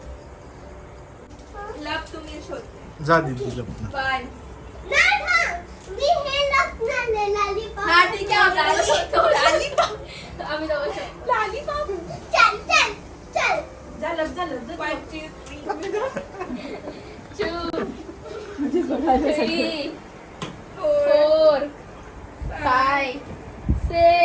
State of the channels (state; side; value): identical; both; correlation 1.00